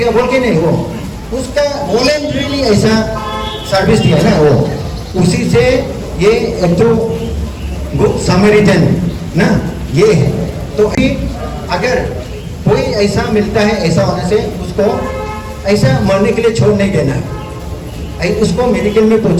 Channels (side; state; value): both; identical; correlation 1.00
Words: बोल के नहीं, वो उसका वॉलंटरीली ऐसा सर्विस दिया ना, वो उसी से ये एक तो गुड समरिटन ना ये है। तो अगर कोई ऐसा मिलता है, ऐसा होने से उसको ऐसा मरने के लिए छोड़ नहीं देना है, उसको मेडिकल में